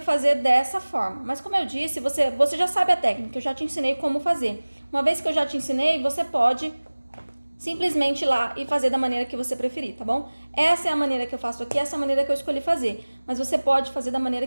fazer dessa forma. Mas como eu disse, você já sabe a técnica, eu já te ensinei como fazer. Uma vez que eu já te ensinei, você pode simplesmente ir lá e fazer da maneira que você preferir, tá bom? Essa é a maneira que eu faço aqui, essa é a maneira que eu escolhi fazer. Mas você pode fazer da maneira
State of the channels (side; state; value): both; inverted; correlation -1.00